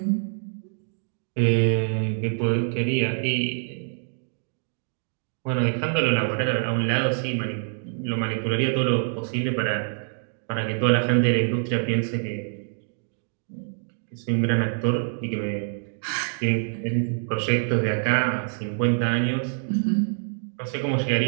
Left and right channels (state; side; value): silent; left; digital silence